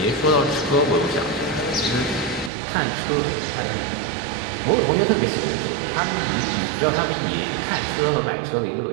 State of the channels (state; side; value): drops out; left; at 2.5 s